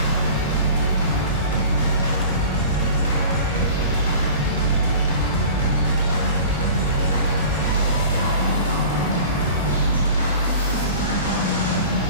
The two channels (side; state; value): both; inverted; correlation -0.40